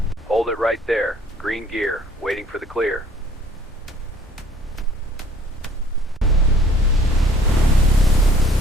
Hold it right there. Green gear, waiting for the clear.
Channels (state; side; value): normal; both; correlation 0.56